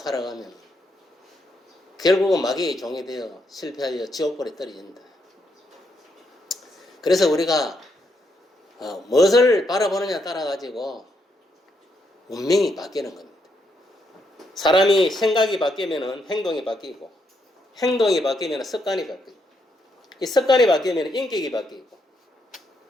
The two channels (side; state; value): both; normal; correlation 0.78